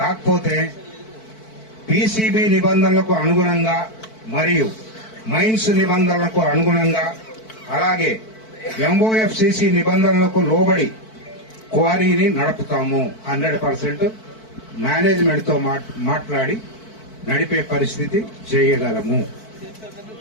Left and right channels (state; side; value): late; right; 4.5 ms